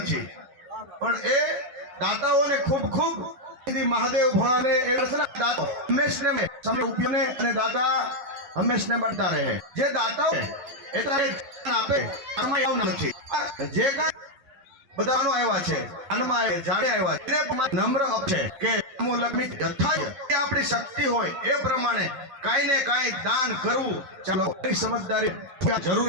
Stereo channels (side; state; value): left; late; 11 ms